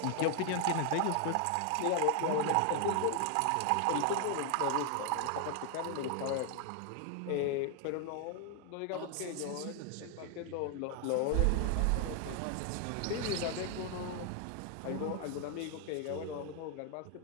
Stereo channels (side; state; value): both; different; correlation 0.00